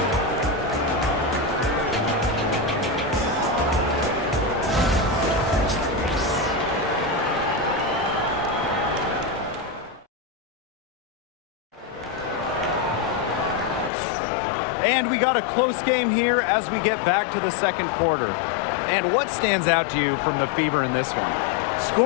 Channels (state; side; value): drops out; right; at 13.9 s